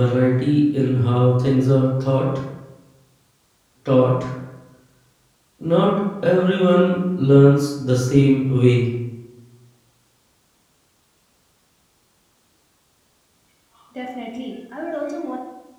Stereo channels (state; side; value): identical; both; correlation 1.00